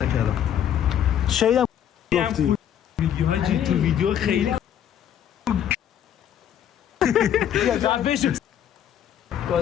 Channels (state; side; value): quieter; right; 9.9 dB